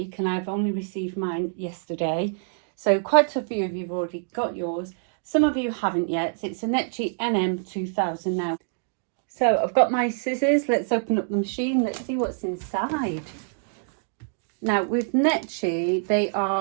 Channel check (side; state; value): left; silent; digital silence